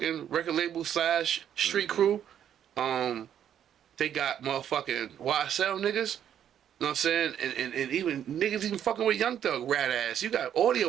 record label / street crew. They got motherfucking YSL niggas. You know what I'm saying? And even niggas even fucking with Young Thug, rat ass. You got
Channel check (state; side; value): quieter; left; 9.8 dB